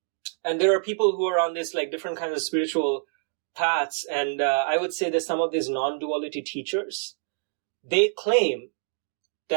And there are people who are on this like different kinds of spiritual paths, and I would say that some of these non-duality teachers, they claim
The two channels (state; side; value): silent; left; 61 dB below the other